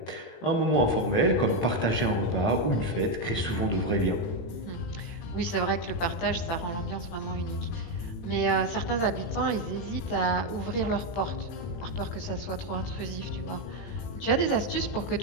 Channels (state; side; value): late; right; 18 ms